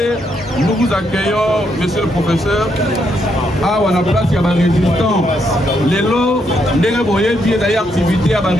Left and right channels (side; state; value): both; normal; correlation 0.77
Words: nous vous accueillons, monsieur le professeur. Ah, on a place, il y a un résistant. Les lots, les bien d'ailleurs activité à un